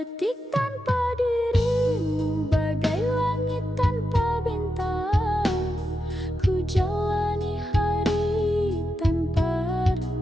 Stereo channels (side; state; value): both; normal; correlation 0.87